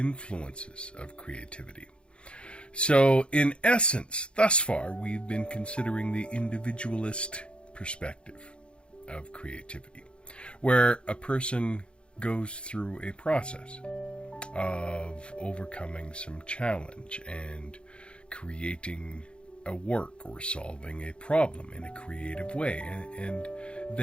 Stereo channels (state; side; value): late; right; 0.057 ms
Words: of creativity. So, in essence, thus far, we've been considering the individualist perspective of creativity, where a person goes through a process of overcoming some challenge and creating a work or solving a problem in a creative way. And